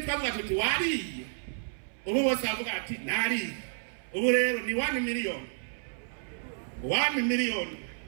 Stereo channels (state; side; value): silent; left; 57 dB below the other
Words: twavuga tuti wariye. Ubu bose bavuga ati nari. Ubu rero ni 1 miliyoni. 1 miliyoni.